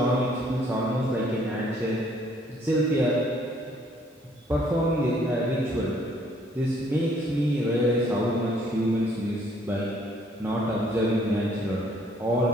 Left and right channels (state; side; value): normal; both; correlation 0.63